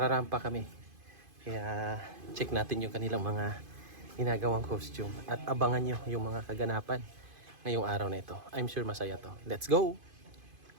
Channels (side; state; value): left; late; 2.5 ms